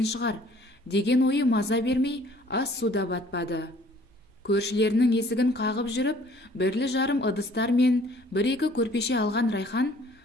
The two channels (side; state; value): both; normal; correlation 0.56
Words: шығар», деген ойы маза бермей, ас суда батпады. Көршілерінің есігін қағып жүріп, бірлі-жарым ыдыстар мен 1-2 көрпеше алған Райхан,